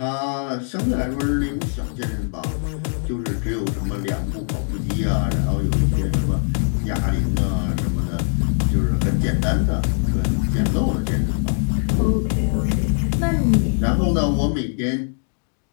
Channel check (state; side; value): silent; right; 61 dB below the other